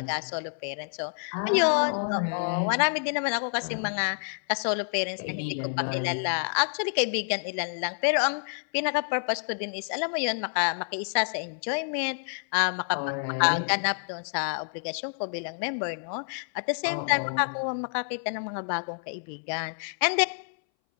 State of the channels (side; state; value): right; silent; 59 dB below the other